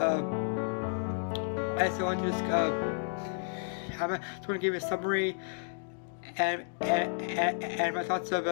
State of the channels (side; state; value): right; silent; digital silence